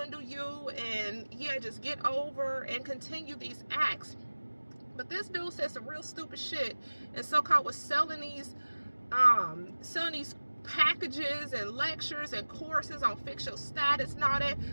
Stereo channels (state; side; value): inverted; both; correlation -1.00